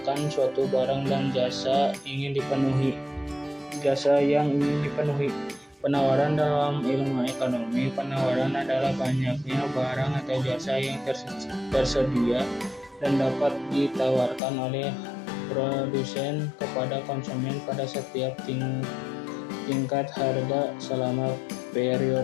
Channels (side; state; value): right; drops out; at 14.4 s